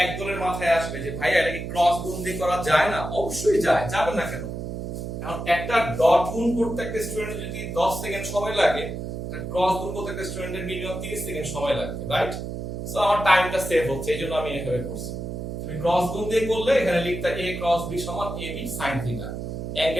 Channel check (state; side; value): noise; right; hum, 6 dB below the sound